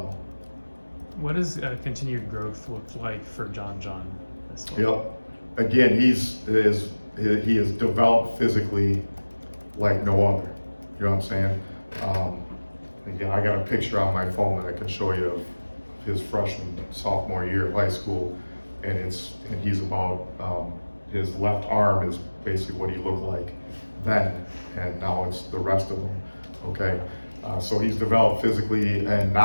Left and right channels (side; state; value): both; inverted; correlation -1.00